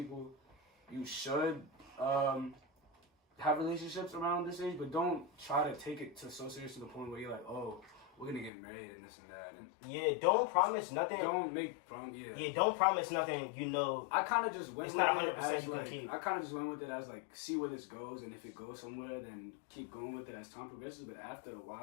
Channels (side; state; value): right; drops out; at 8.5 s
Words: you should have relationships around this age, but don't try to take it so serious to the point where you're like, oh, we're gonna get married and this and that, and Yeah, don't promise nothing. don't make prom. Yeah. Yeah, don't promise nothing. You know, I kind of just went. It's with not it 100% as, you can like, keep. I kind of just went with it as like see where this goes, and if it goes somewhere, then keep going with it as time progresses. But after a